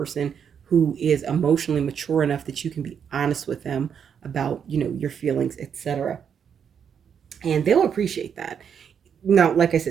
who is emotionally mature enough that you can be honest with them about, your feelings, etc. And they'll appreciate that. Now, like I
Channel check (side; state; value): left; quieter; 7.6 dB